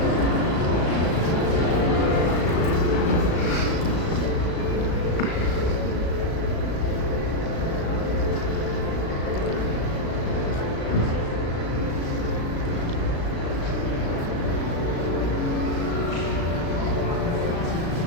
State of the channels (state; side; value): late; right; 36 ms